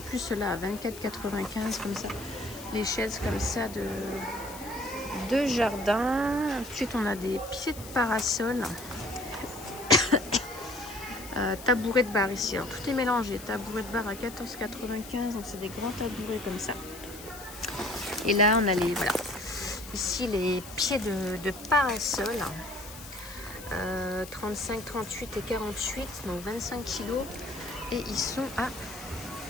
ceux-là à 24,95 € comme ça. Les chaises comme ça de jardin. Ensuite on a des pieds de parasol. Tabouret de bar ici. Alors tout est mélangé. Tabouret de bar à 14,95 €. Donc c'est des grands tabourets comme ça. Et là on a ici les pieds de parasol, 35, 38 et 48, donc 25 kg, et ils sont à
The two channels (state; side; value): noise; left; hiss, 15 dB below the sound